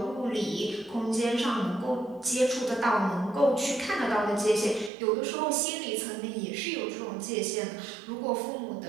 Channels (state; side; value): drops out; left; at 4.9 s